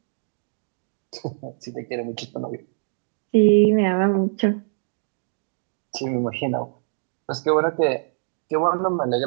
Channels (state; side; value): silent; left; digital silence